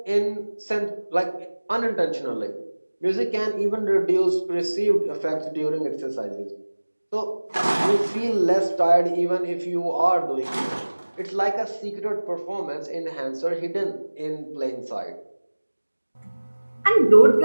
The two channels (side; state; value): both; inverted; correlation -1.00